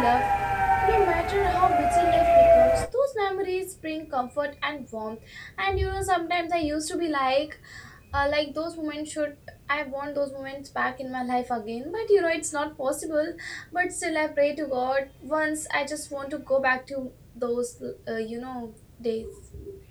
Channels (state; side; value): identical; both; correlation 1.00